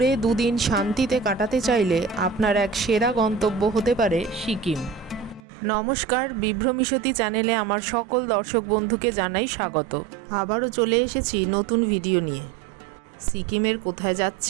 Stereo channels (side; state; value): left; drops out; at 5.4 s